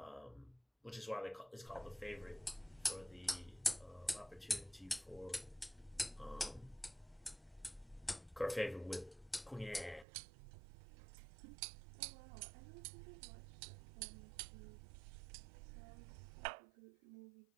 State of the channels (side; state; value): left; drops out; at 10.1 s